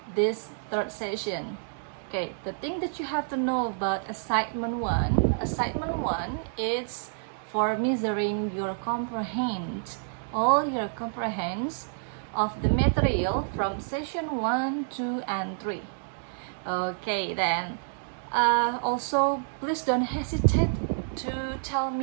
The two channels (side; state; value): left; silent; digital silence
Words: this third session. Okay, the thing that you have to know about assignment 1 is for measuring your all your comprehends of the material from session 1, 2, and 3. Okay, then also please don't hesitate to tell